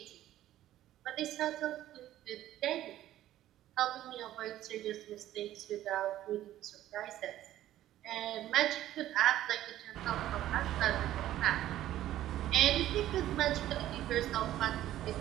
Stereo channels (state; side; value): quieter; left; 13.4 dB